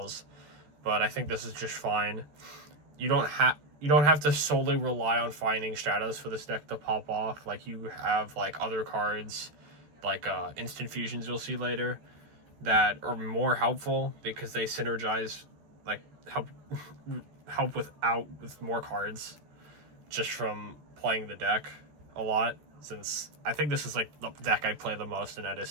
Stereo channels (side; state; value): left; late; 13 ms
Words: but I think this is just fine. You don't have to solely rely on finding Stratos for this deck to pop off. Like, you have like other cards, like instant fusions you'll see later, that are more helpful because they synergize, like help with more cards just from playing the deck a lot, since I think this is like the deck I play the most in